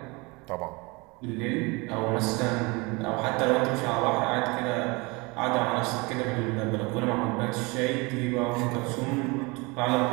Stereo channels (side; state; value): left; quieter; 26.6 dB